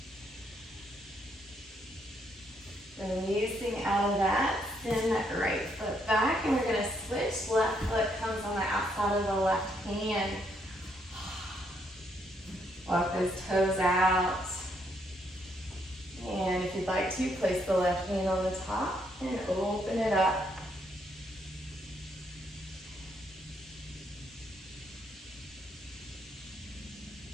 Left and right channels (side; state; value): both; normal; correlation 0.73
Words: Releasing out of that, send that right foot back, and we're going to switch. Left foot comes on the outside of the left hand. Walk those toes out. And if you'd like to, place the left hand on the top and open it up.